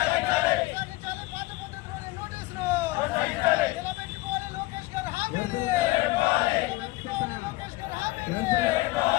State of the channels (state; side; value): quieter; right; 20.6 dB